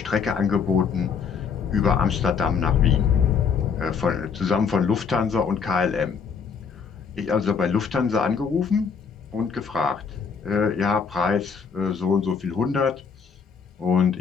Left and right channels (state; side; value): quieter; right; 6.1 dB